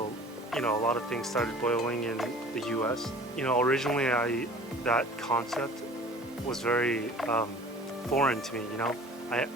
a lot of things started boiling in the U.S. Originally that concept was very foreign to me. I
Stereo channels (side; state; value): both; normal; correlation 0.46